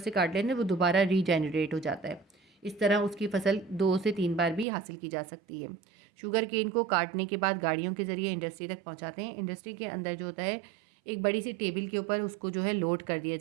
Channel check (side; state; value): left; drops out; at 4.7 s